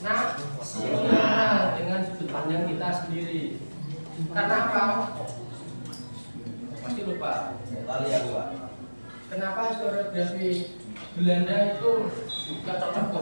dengan sudut pandang kita sendiri. Karena apa? Pasti lupa. Lali aku, Pak. Kenapa historiografi Belanda itu gak cocok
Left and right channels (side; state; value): both; inverted; correlation -1.00